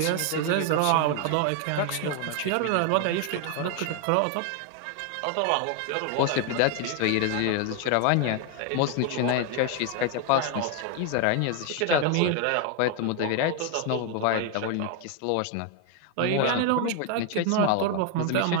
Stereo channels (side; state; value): both; different; correlation 0.01